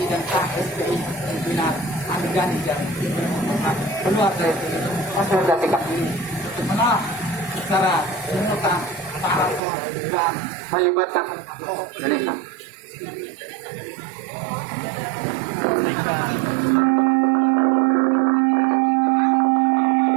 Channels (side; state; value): left; drops out; at 9.6 s